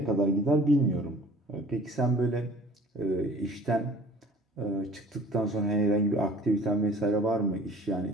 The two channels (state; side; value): normal; both; correlation 0.49